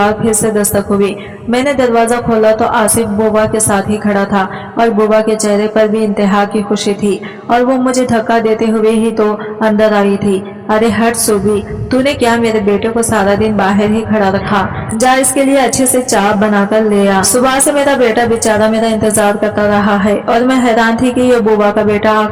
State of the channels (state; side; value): identical; both; correlation 1.00